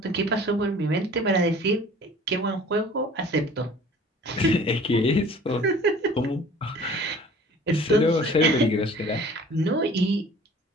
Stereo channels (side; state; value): both; normal; correlation 0.48